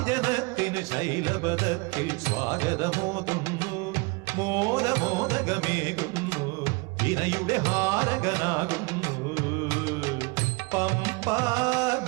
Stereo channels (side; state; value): left; quieter; 28.1 dB